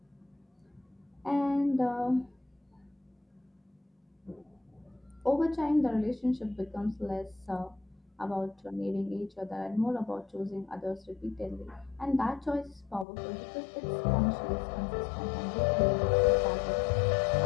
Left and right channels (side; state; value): right; drops out; at 13.1 s